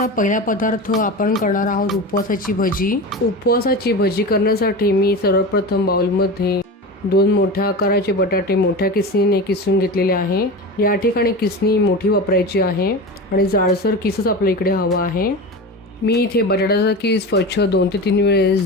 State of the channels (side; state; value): both; normal; correlation 0.27